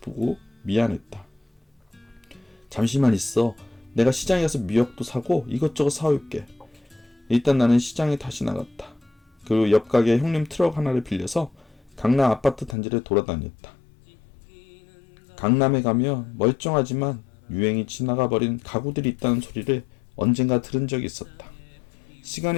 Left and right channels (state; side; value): drops out; right; at 12.8 s